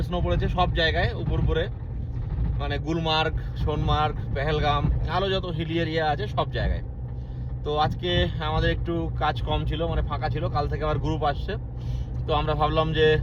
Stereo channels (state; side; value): identical; both; correlation 1.00